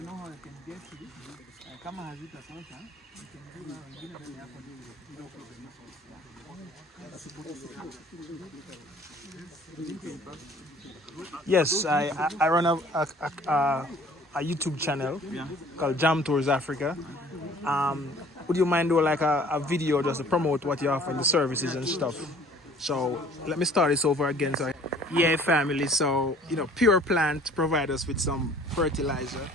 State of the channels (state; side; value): normal; both; correlation 0.53